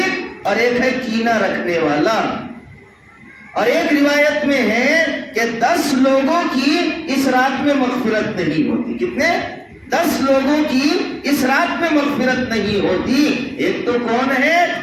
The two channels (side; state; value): both; identical; correlation 1.00